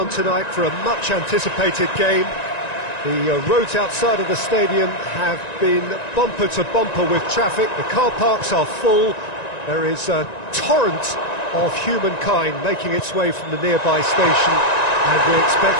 tonight for a much anticipated game. The roads outside of the stadium have been bumper to bumper with traffic. The car parks are full. There is a torrent of humankind making its way from the nearby station, and we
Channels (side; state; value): right; late; 1.9 ms